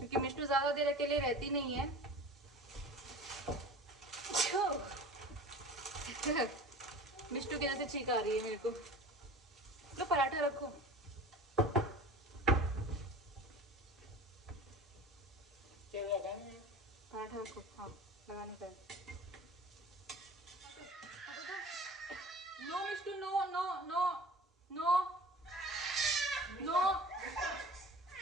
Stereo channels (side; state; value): both; normal; correlation 0.40